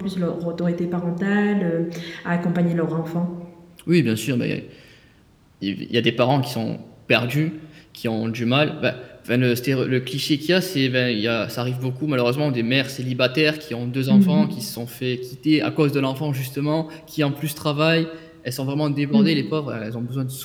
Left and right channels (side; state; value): both; identical; correlation 1.00